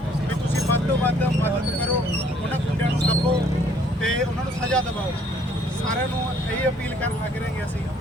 ਵੀ ਤੁਸੀਂ ਵੱਧ ਤੋਂ ਵੱਧ ਮਦਦ ਕਰੋ, ਉਹਨਾਂ ਗੁੰਡਿਆਂ ਨੂੰ ਦੱਬੋ ਤੇ ਉਹਨਾਂ ਨੂੰ ਸਜ਼ਾ ਦਿਵਾਓ। ਸਾਰਿਆਂ ਨੂੰ ਇਹ ਅਪੀਲ ਕਰਨ ਲੱਗ ਰਹੇ ਹਾਂ ਅਸੀਂ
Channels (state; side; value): normal; both; correlation 0.62